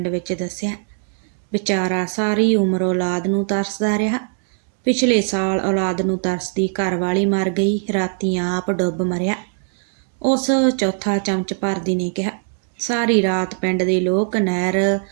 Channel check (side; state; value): left; silent; digital silence